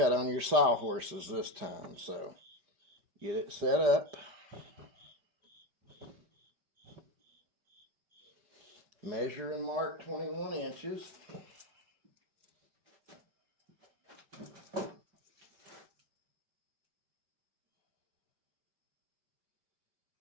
on your sawhorses this time, so get it set up. Measure and mark 21 inches.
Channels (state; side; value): late; left; 5.2 ms